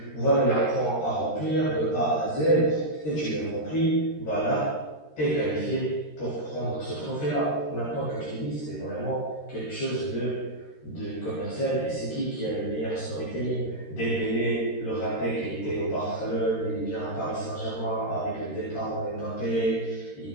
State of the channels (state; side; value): late; right; 13 ms